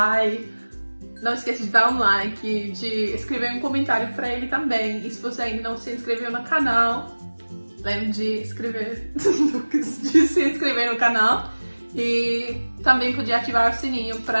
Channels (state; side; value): inverted; both; correlation -1.00